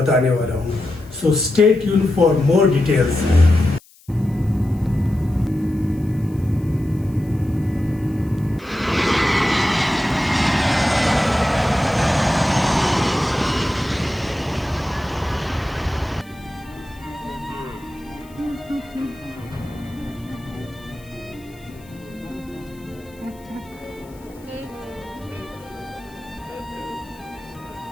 वाला हूँ। So stay tuned for more details.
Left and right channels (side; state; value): left; noise; hiss, 27 dB below the sound